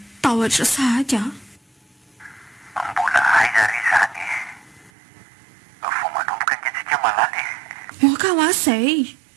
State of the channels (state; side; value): drops out; left; at 4.9 s